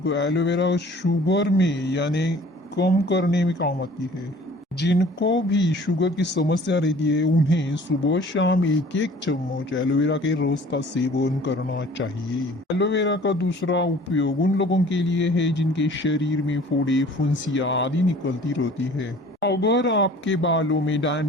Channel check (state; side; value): normal; both; correlation 0.49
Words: एलोवेरा शुगर में यानी कम करने में काम आती है। जिनको भी शुगर की समस्या रहती है उन्हें सुबह शाम एक एक चम्मच एलोवेरा के रस का सेवन करना चाहिए। एलोवेरा का दूसरा उपयोग उन लोगों के लिए है जिनके शरीर में फोड़े फुंसियाँ आदि निकलती रहती है। अगर आपके बालों में